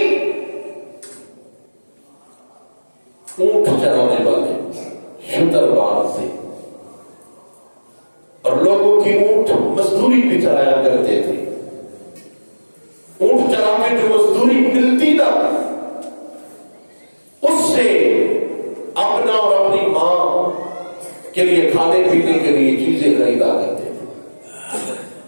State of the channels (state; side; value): inverted; both; correlation -1.00